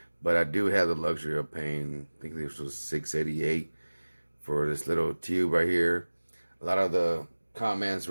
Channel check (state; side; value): inverted; both; correlation -1.00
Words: But I do have the luxury of paying, I think this was $6.88 for this little tube right here. A lot of the comments